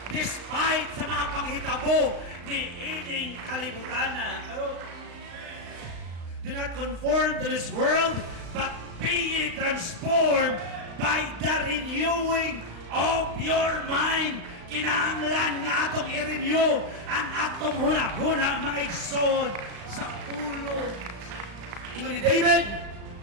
despite sa mga panghitabo ni ining kalibutan na. Do not conform to this world, but be ye transformed by the renewing of your mind. Kinahanglan nga atong i-renew ang atong huna-huna, mga igsoon, sa pulo. Ingon ni David,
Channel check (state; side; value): late; left; 35 ms